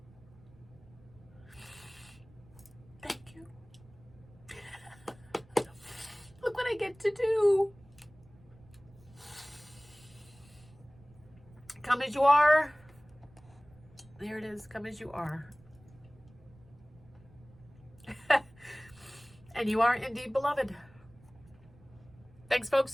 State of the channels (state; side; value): noise; right; rumble, 25 dB below the sound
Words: Thank you. Look what I get to do. Come as you are. There it is. Come as you are. And you are indeed beloved. Thanks,